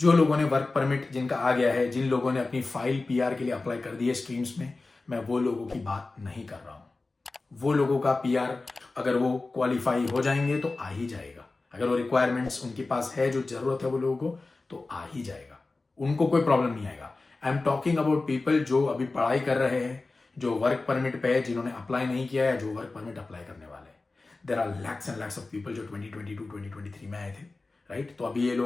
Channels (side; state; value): right; quieter; 3.5 dB